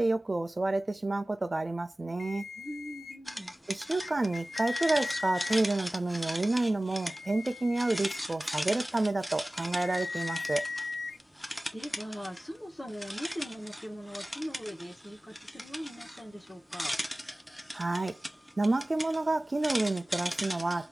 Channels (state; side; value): normal; both; correlation 0.98